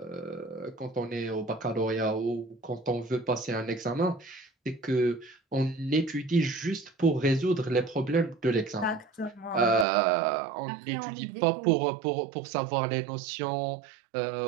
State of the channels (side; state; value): left; drops out; at 9.9 s